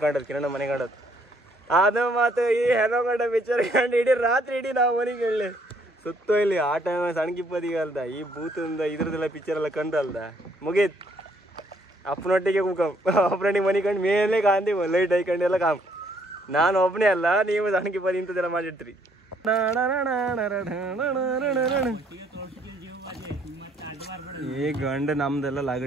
ಕಂಡದ್ದು, ಕಿರಣ ಮನೆ ಕಂಡದ್ದು. ಅದು ಮಾತು ಈ ಹೆನಕೊಂಡ ಪಿಕ್ಚರ್ ಕಂಡು ಇಡೀ ರಾತ್ರಿ ಇಡೀ ನಾವು ಮನೆಗೆ ಹೇಳಿ ಸುತ್ತೋ ಇಲ್ಲಿ. ಆ ಟೈಮ್ ಸಣ್ಣ ಕಿಪ್ಪತ್ತಿಗೆ ಅಲ್ದ ಈ ಭೂತಂದ ಇದ್ರದ್ದೆಲ್ಲ ಪಿಕ್ಚರ್ ಎಲ್ಲ ಕಂಡಲ್ದ ಮುಗೀತ್. ಅಪ್ಪನೊಟ್ಟಿಗೆ ಅಪ್ಪನೊಟ್ಟಿಗೆ ಮನೆ ಕಂಡು ಮೇಲೆ ಕಾಂತಿ ಲೈಟ್ ಹಾಕೊಂಡು ಎಲ್ಲ ಕಾಮ್. ನಾನು ಒಬ್ಬನೇ ಅಲ್ಲ, ನೀವು ಸಣ್ಣ ಕಿಪ್ಪತ್ತಿ ಇಂಥದ್ದೆಲ್ಲ ಮಾಡಿರ್ತೀರಿ. ಈ ಗಂಡ ನಮ್ದೆಲ್ಲ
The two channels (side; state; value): both; normal; correlation 0.67